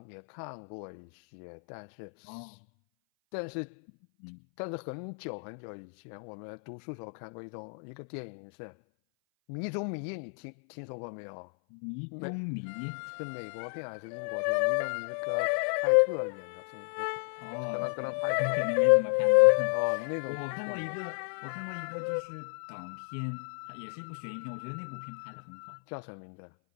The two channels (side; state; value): right; silent; 56 dB below the other